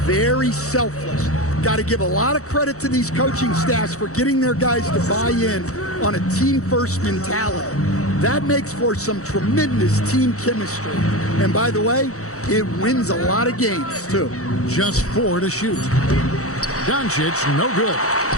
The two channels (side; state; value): right; late; 0.65 ms